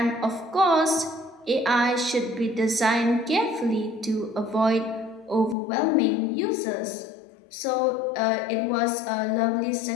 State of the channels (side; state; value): right; drops out; at 5.6 s